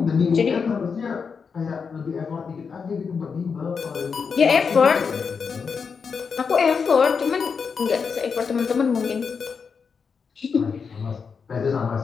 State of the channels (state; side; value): quieter; right; 5.8 dB